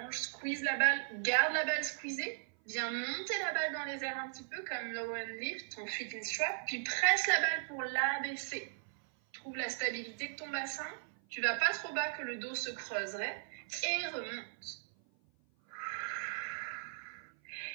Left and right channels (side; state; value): left; silent; 53 dB below the other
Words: Squeeze la balle. Garde la balle squeezée. Viens monter la balle dans les airs un petit peu comme low and lift, ton feet in strap. Puis presse la balle pour l'abaisser. Trouve la stabilité de ton bassin. Tu vas pas trop bas que le dos se creuserait. Et remonte.